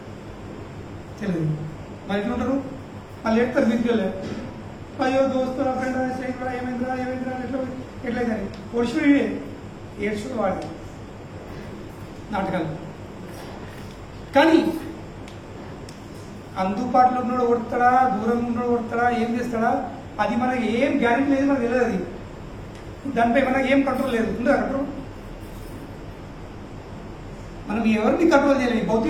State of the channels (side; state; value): both; identical; correlation 1.00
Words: తెలియదు. మరి ఎట్లా ఉంటారు? మళ్ళీ ఎడతారు మీదికెళ్ళే, అయ్యో దోస్తు నా ఫ్రెండ్ ఏమైందిరా ఏమైందిరా ఎట్లయితే ఓడిచి ఏడ్చుకుని వాడు నాటకాలు. కానీ అందుబాటులో ఉన్నాడు కొడతాడా, దూరంగా ఉన్నాడు కొడతాడా, ఏం చేస్తాడా, అది మనకి ఏం గ్యారెంటీ లేదు, మనకు తెలియదు. అది దానిపై మనకి ఏం కంట్రోల్ లేదు. ఉందా కంట్రోల్? మనం ఎవరిని కంట్రోల్ చేయలేదు.